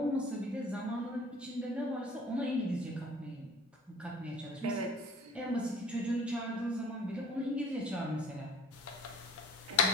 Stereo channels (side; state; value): both; normal; correlation 0.49